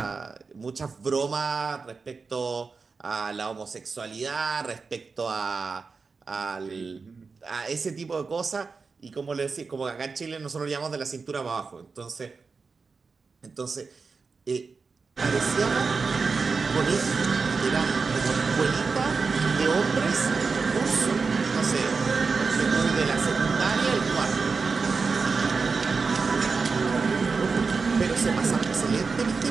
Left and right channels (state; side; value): quieter; left; 4.7 dB